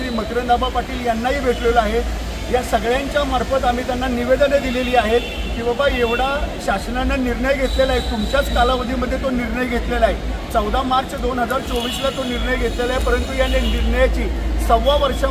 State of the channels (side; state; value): both; identical; correlation 1.00